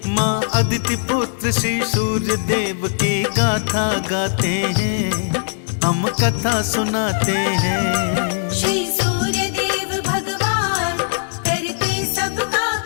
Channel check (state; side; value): silent; right; 61 dB below the other